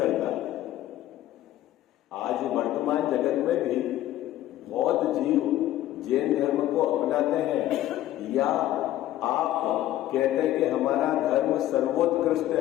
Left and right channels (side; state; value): right; quieter; 13.7 dB